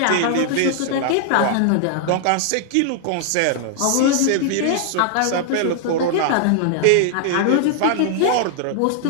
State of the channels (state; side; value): different; both; correlation -0.01